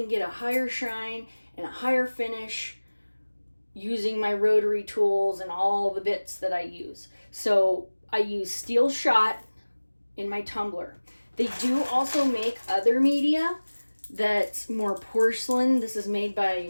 get a higher shine and a higher finish using my rotary tools and all the bits that I use. So I use steel shot in my tumbler. They do also make other media that's more porcelain. This is made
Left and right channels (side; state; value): both; inverted; correlation -1.00